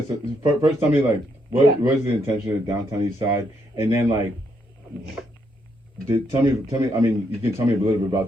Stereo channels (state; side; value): normal; both; correlation 0.76